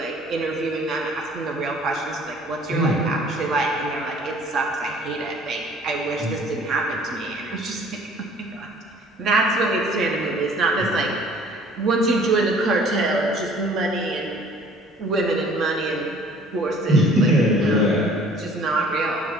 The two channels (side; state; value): both; normal; correlation 0.53